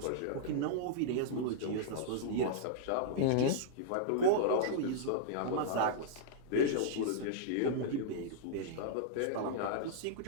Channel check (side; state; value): both; different; correlation -0.02